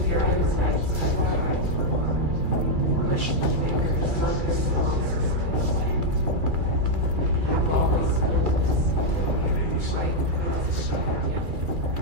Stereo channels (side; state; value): left; late; 2.4 ms